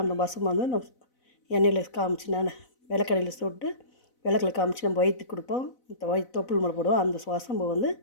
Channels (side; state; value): right; late; 4.0 ms